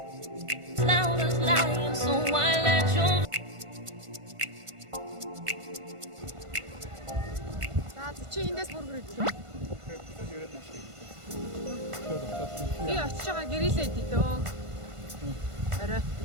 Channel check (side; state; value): left; late; 1.5 ms